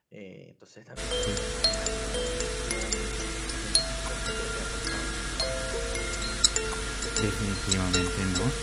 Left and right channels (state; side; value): identical; both; correlation 1.00